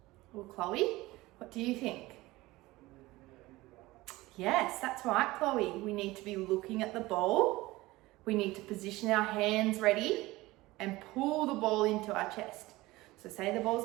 Well, Chloe, what do you think? Yes, that's right, Chloe. We need to be looking at the ball. We need to position our hands ready and pull the ball into our chest. So say the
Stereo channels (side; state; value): left; quieter; 19.4 dB